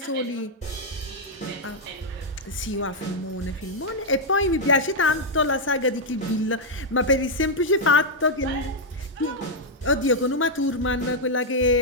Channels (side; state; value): both; normal; correlation -0.02